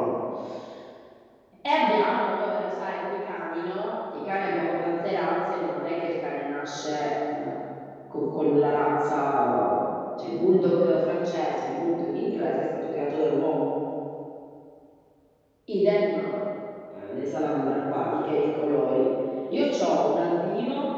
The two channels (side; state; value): both; identical; correlation 1.00